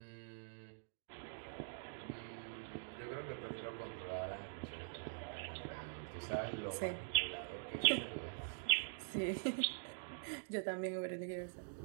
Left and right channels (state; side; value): silent; left; digital silence